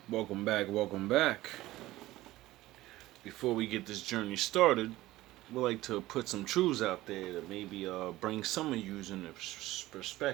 Welcome back, welcome back. Before we get this journey started, we'd like to put some truths out there that maybe bring some of you in a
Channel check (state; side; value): quieter; left; 16.9 dB